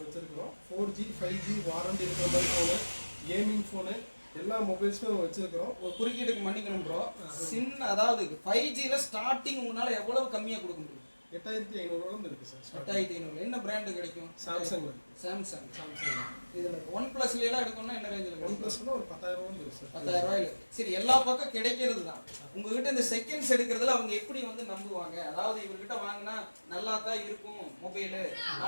வச்சுருக்கிறோம். 4G 5G வாரண்டி இருக்கிற மாதிரி ஃபோனு, கேமிங் ஃபோனு, எல்லா மொபைல்ஸுமே நம்ம வச்சுருக்கிறோம். ஒரு குறுக்கீடுக்கு மன்னிக்கணும் ப்ரோ, சின்ன அதாவது 5Gயில் ஸ்டார்டிங் உங்களால் எவ்வளவு கம்மியாக கொடுக்க முடியும்? 8,500 இருக்குது சார். 8,500. என்ன பிராண்டு கிடைக்கும்? சாம்சங். சாம்சங். இதில் OnePlusலாம் எடுக்கணும்னா என்ன ரேஞ்சில்? OnePlusனா ஒரு 10,000 இருக்குது சார். 10,000 ரூபாயில். சரி, எல்லா பக்கம் கிடைக்கிறது தான். உங்ககிட்ட இந்த செகண்ட்ஸ் எடுக்கிறதுல அவங்க எப்படி வந்து நம்புவாங்க? அதாவது இவர்கிட்ட வாங்கினா நல்லா தான் இருக்கும் மொபைலு,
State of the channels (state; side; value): inverted; both; correlation -1.00